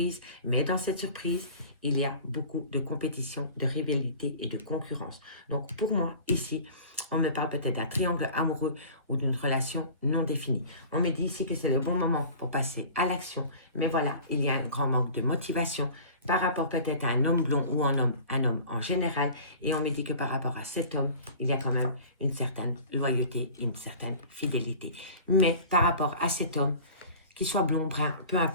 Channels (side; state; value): both; inverted; correlation -0.41